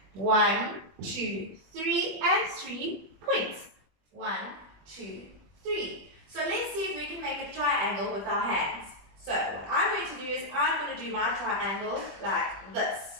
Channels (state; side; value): late; left; 21 ms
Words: 1, 2, 3, and 3 points. 1, 2, 3. So let's see if we can make a triangle with our hands. So what I'm going to do is I'm going to do my triangle like this.